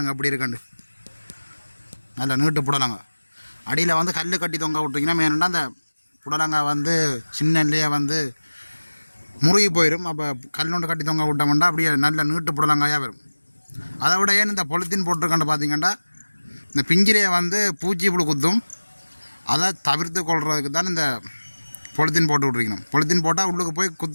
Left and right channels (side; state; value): both; inverted; correlation -1.00